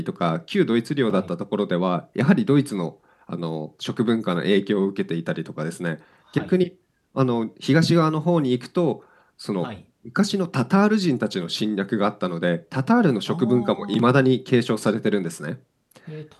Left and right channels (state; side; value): identical; both; correlation 1.00